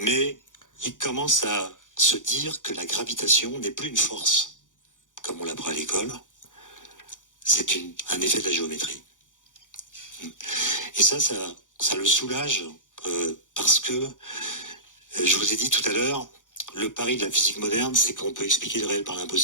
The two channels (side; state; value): right; late; 0.87 ms